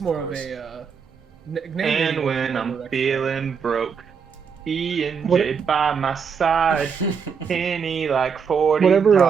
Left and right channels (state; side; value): quieter; left; 6.3 dB